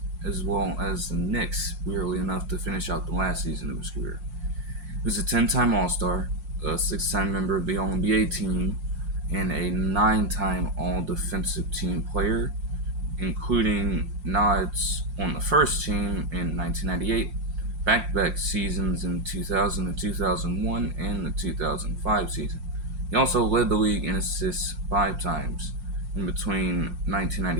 as well as the Knicks, weirdly enough, to finish out the last season of his career. He was a 10-time All-Star, a 6-time member of the All-NBA team, and a 9-time All-Defensive Team player, including nods on the first team in 1998, back-to-back seasons in 2000 and 2001, and the 2005 season. He also led the league in assists 5 times in between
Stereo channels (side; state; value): left; late; 5.6 ms